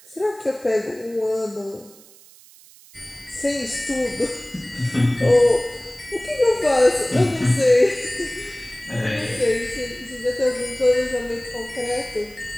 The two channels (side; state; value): right; noise; hiss, 24 dB below the sound